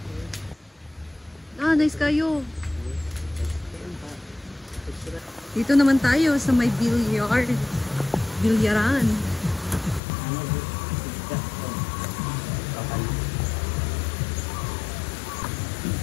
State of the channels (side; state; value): right; drops out; at 10.0 s